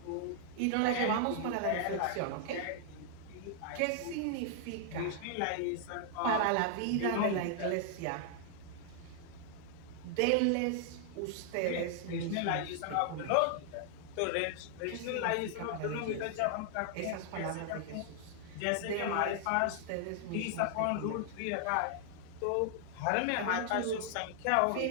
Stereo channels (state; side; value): different; both; correlation 0.00